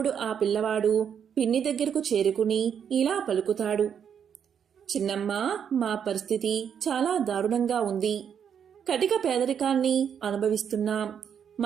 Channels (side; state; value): left; quieter; 8.0 dB